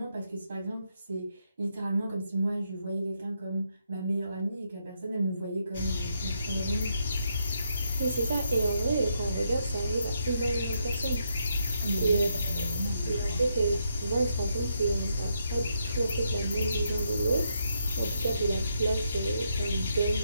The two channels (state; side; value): inverted; both; correlation -0.78